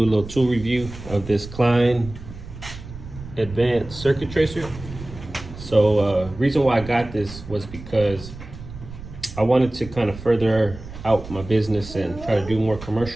a little tool review of this Klein Advanced Circuit Tracer. So reason why I got this was because I wanted to kind of further out my business and try to do more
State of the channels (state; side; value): noise; right; rumble, 13 dB below the sound